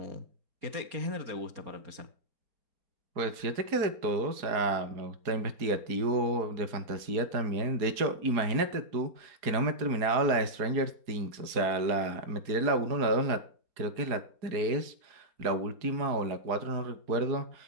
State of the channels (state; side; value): late; left; 4.8 ms